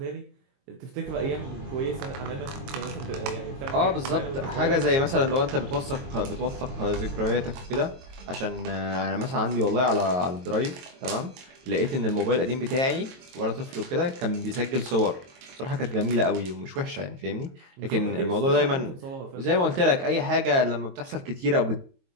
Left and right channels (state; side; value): late; left; 22 ms